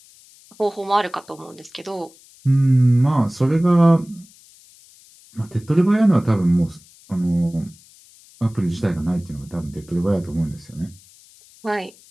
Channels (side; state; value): left; noise; hiss, 26 dB below the sound